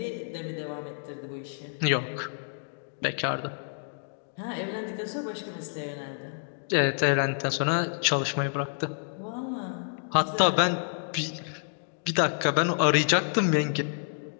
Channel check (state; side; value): silent; right; digital silence